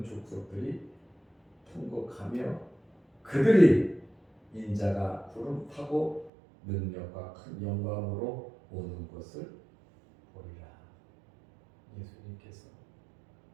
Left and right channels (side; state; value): left; drops out; at 6.3 s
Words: 족속들이 통곡하며 그들이 인자가 구름 타고 능력과 큰 영광으로 오는 것을 보리라. 예수님께서